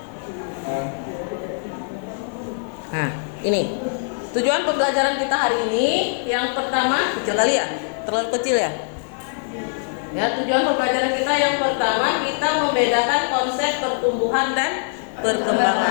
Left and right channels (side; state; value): right; silent; digital silence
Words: Nah, ini. Tujuan pembelajaran kita hari ini yang pertama, kecil kali ya? Terlalu kecil ya? Ya, tujuan pembelajaran kita yang pertama kita membedakan konsep pertumbuhan dan